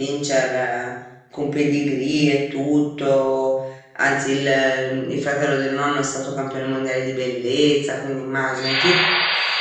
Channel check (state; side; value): identical; both; correlation 1.00